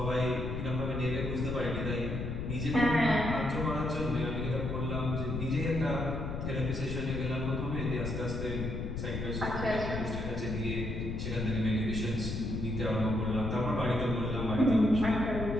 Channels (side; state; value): left; noise; rumble, 4 dB below the sound